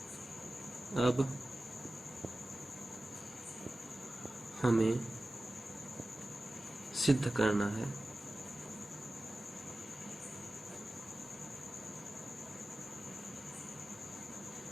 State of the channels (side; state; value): both; normal; correlation 0.95